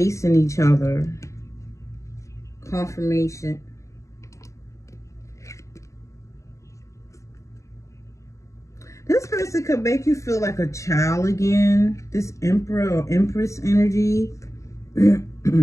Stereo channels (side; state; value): right; late; 0.15 ms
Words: each other. Confirmation. This person could make you feel like a child again. This Emperor or Empress energy.